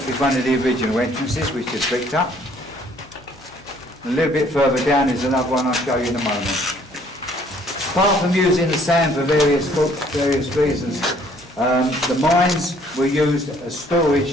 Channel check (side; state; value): both; normal; correlation 0.61